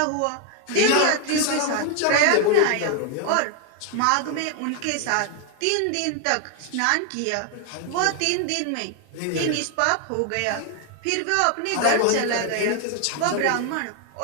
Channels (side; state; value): both; different; correlation 0.00